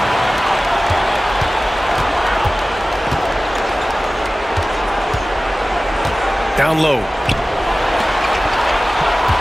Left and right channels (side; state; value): both; normal; correlation 0.97